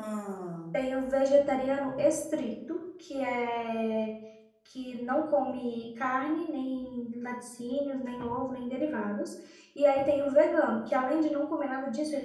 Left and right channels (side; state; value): both; identical; correlation 1.00